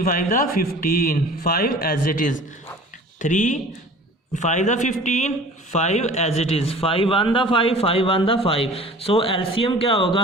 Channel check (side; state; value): both; normal; correlation 0.45